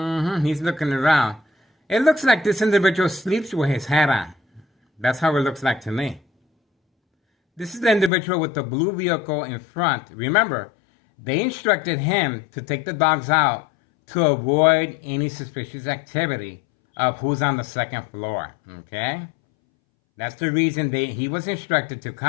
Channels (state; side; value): drops out; right; at 8.1 s